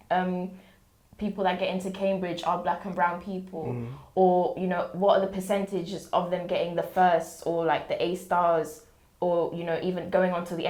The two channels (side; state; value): both; identical; correlation 1.00